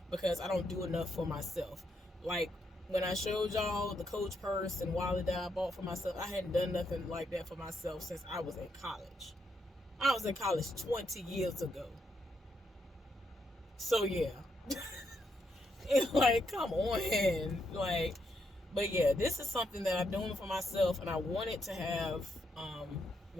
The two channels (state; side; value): normal; both; correlation 0.79